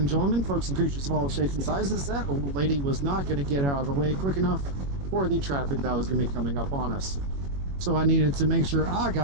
gentlemen, folks and creatures of all shapes and sizes. That old lady was not going to get out of the way quick enough for the traffic that was going to be coming up on us. So I needed to make sure I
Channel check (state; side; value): late; left; 21 ms